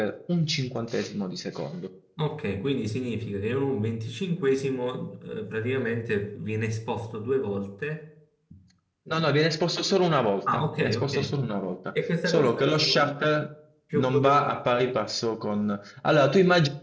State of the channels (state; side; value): identical; both; correlation 1.00